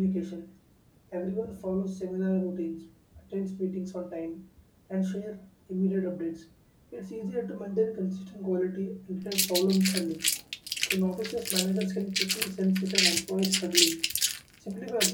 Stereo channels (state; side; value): identical; both; correlation 1.00